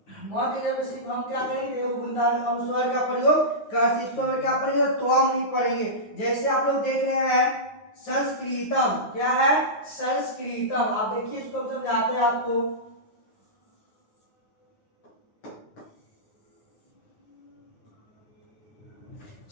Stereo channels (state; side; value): late; right; 9.4 ms